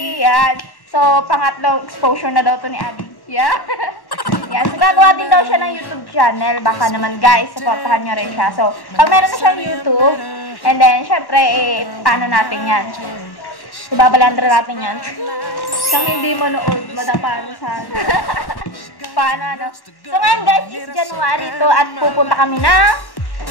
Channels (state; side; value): late; right; 1.1 ms